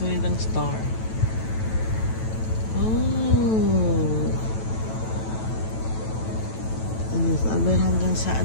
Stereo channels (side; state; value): right; late; 9.1 ms